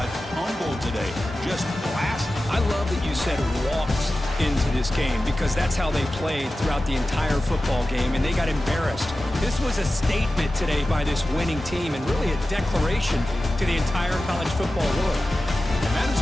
humbled today. Just blasted. I love that you said walked into this game because that's how they played throughout the entire football game, and they got embarrassed. This was a statement today by this winning team and really a declaration to the entire college football world. And that is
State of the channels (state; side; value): normal; both; correlation 0.95